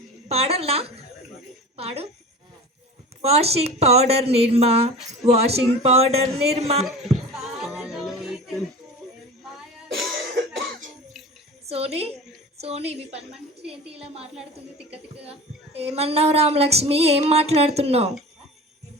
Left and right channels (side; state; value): both; normal; correlation 0.35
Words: పాడల్నా? పాడు. వాషింగ్ పౌడర్ నిర్మా, వాషింగ్ పౌడర్ నిర్మా. సోనీ, సోనీ మీ పని మనిషి ఏంటి ఇలా మాట్లాడుతుంది తిక్క తిక్కగా? ఏమన్నావు రామలక్ష్మి? ఏం మాట్లాడుతున్నావు?